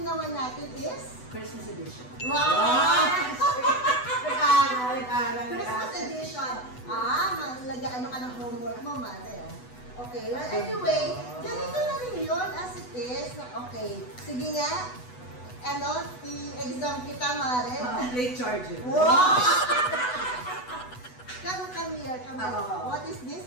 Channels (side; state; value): right; late; 8.1 ms